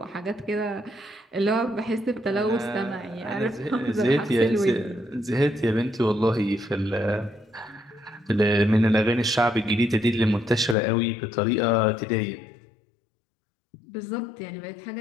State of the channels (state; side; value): drops out; right; at 10.8 s